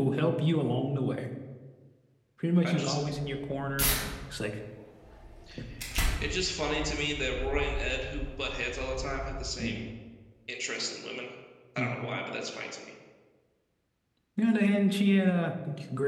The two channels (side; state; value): both; identical; correlation 1.00